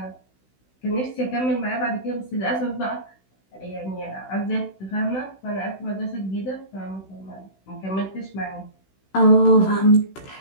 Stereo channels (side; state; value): right; late; 16 ms